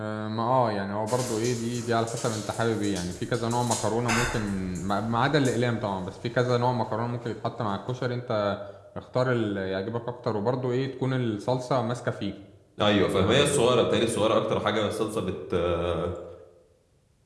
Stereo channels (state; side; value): identical; both; correlation 1.00